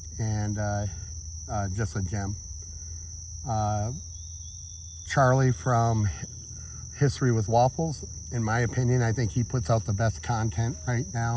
and just a gem. Charlie from History with Waffles, in my opinion, I think he puts out the best content right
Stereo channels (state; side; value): identical; both; correlation 1.00